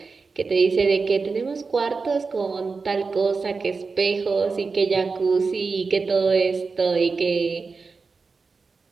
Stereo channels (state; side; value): quieter; left; 4.5 dB